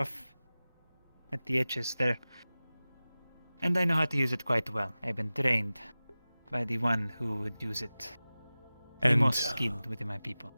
at the edges there, and I know how to use it quite well. I've been trained by the one who would use it, the most skilled within my people.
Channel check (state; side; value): inverted; both; correlation -0.97